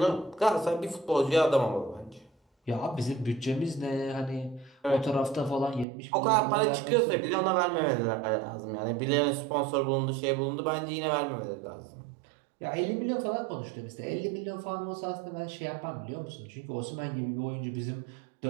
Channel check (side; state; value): left; drops out; at 5.9 s